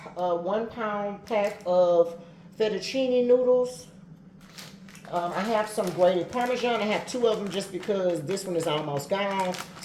a 1 pound pack of fettuccine noodles. I have some grated Parmesan. I have 2 of them just because this one is almost gone.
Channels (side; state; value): both; identical; correlation 1.00